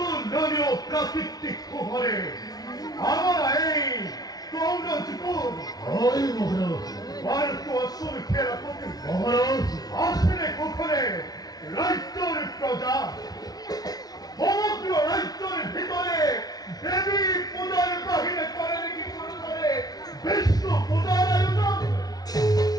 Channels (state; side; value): late; right; 0.19 ms